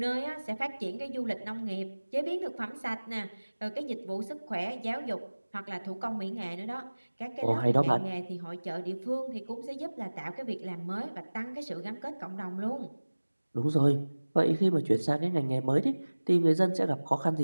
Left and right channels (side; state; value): both; inverted; correlation -1.00